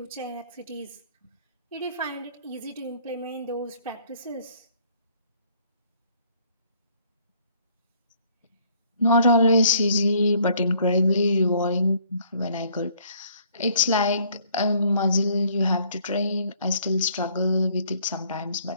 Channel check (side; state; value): both; inverted; correlation -0.62